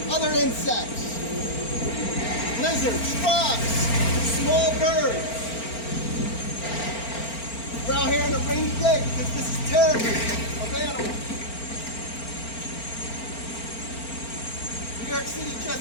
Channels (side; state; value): right; late; 4.4 ms